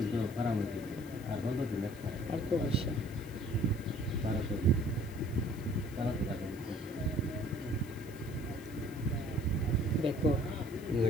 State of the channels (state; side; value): noise; left; hiss, 20 dB below the sound